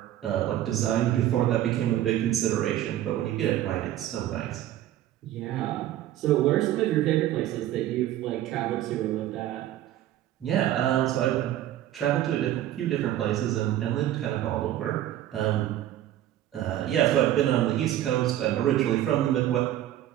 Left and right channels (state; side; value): quieter; left; 12.8 dB